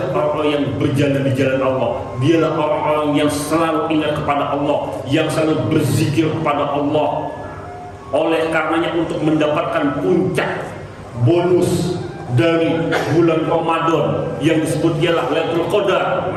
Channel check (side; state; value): both; identical; correlation 1.00